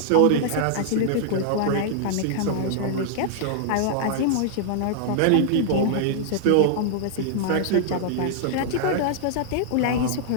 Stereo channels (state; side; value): different; both; correlation -0.01